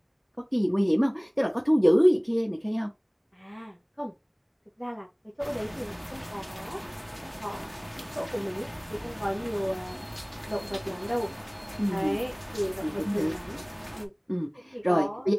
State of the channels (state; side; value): identical; both; correlation 1.00